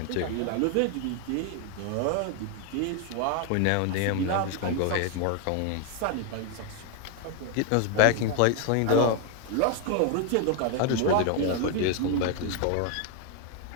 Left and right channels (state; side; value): different; both; correlation 0.01